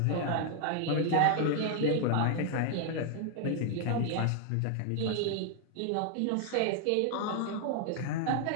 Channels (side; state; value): both; different; correlation 0.00